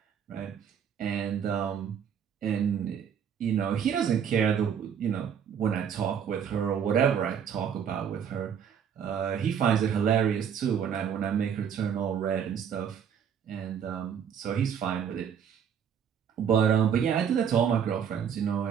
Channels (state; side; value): quieter; left; 8.0 dB